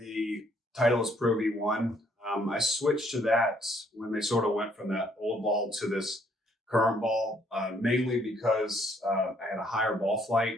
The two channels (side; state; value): both; normal; correlation 0.66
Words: Titleist Pro V1. I switched to that when they sort of went from that old ball to this current ball, mainly because I had a higher ball flight